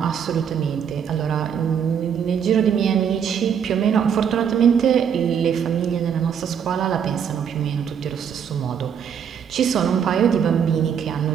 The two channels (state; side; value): quieter; left; 7.9 dB